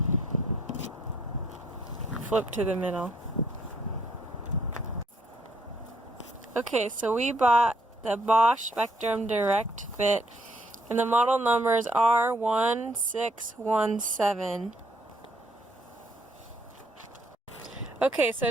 flipped to the middle. Okay, so we bought the Bosch Spectrum Direct fit, and the model number is R1617. Okay, so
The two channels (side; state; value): both; normal; correlation 0.69